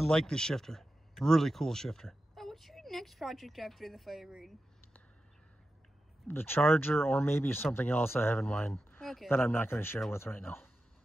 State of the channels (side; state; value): both; normal; correlation 0.91